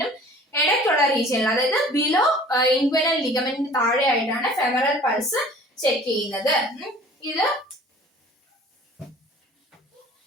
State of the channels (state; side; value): normal; both; correlation 0.48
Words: ഇടയ്ക്കുള്ള റീജിയനിൽ, അതായത് ബിലോ ഇൻഗ്വൈനൽ ലിഗമെന്റിന് താഴെയായിട്ടാണ് ഫെമറൽ പൾസ് ചെക്ക് ചെയ്യുന്നത്. ഇത്